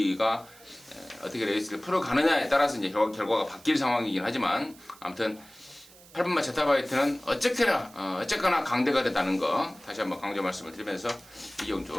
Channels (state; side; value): noise; right; hiss, 23 dB below the sound